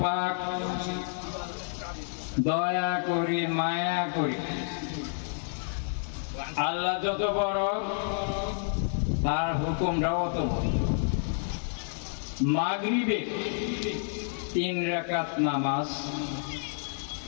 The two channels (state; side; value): silent; right; 58 dB below the other